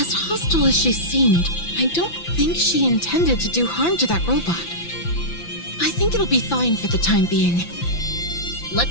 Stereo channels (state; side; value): late; right; 5.9 ms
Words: hostile as she seemed, I don't think she intended to do harm to that robot. I think it'll be fine for the time being.